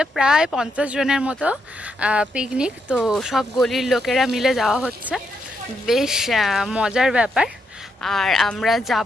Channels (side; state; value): both; normal; correlation 0.79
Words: প্রায় 50 জনের মতো পিকনিক। তো সব গলির লোকেরা মিলে যাওয়া হচ্ছে, বেশ মজার ব্যাপার। আর আমরা